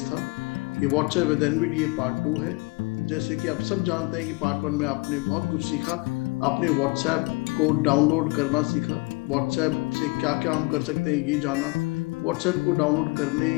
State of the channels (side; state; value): right; quieter; 26.9 dB